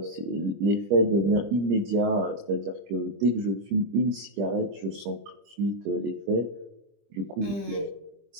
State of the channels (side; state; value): left; late; 25 ms